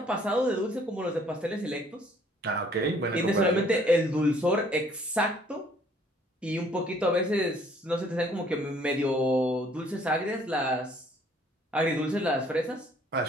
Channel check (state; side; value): normal; both; correlation 0.60